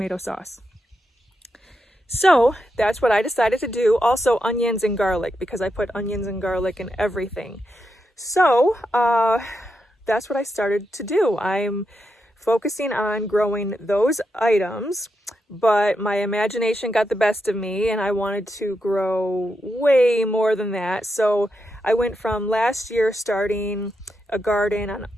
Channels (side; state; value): both; normal; correlation 0.85